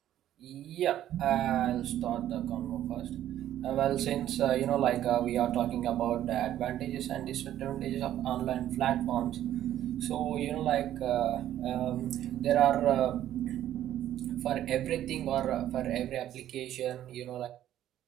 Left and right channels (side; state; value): left; quieter; 12.1 dB